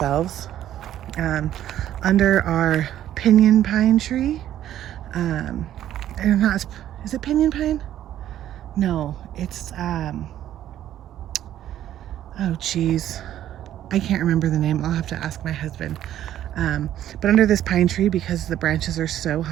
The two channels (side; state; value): left; quieter; 11.9 dB